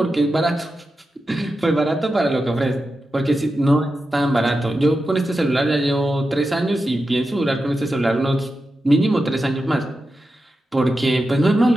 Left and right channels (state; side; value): normal; both; correlation 0.90